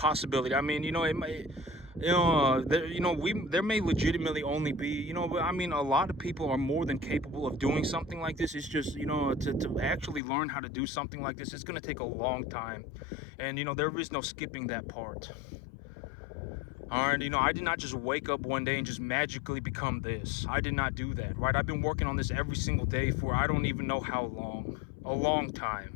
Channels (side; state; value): right; drops out; at 10.2 s